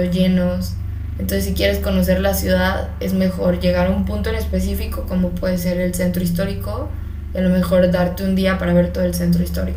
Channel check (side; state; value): both; identical; correlation 1.00